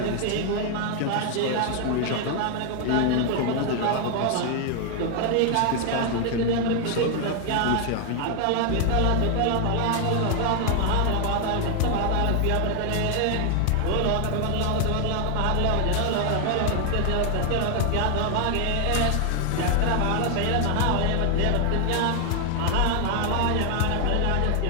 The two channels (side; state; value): both; different; correlation 0.00